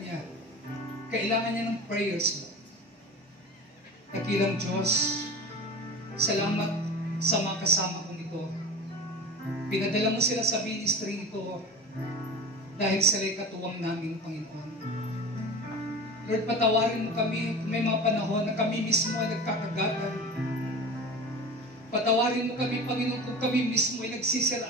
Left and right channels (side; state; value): both; normal; correlation 0.32